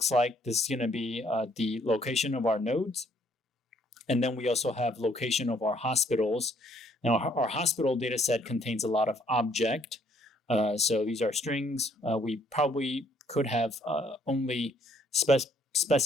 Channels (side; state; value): both; normal; correlation 0.65